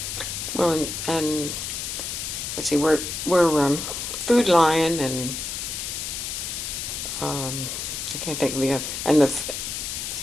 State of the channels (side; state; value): left; noise; hiss, 4 dB below the sound